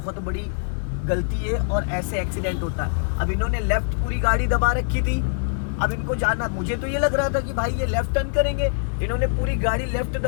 बड़ी गलती है और ऐसे एक्सीडेंट होता है। अब इन्होंने लेफ्ट पूरी गाड़ी दबा रखी थी, अब इनको जाना, मुझे तो ये लग रहा था कि भाई ये लेफ्ट टर्न करेंगे, इन्होंने पूरी गाड़ी लेफ्ट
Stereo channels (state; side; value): silent; right; digital silence